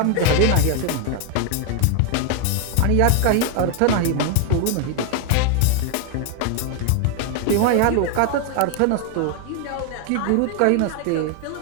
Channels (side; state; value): both; different; correlation 0.01